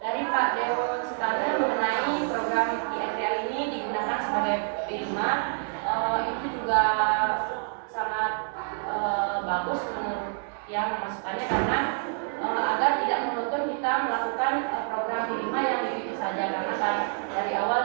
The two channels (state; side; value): silent; left; 60 dB below the other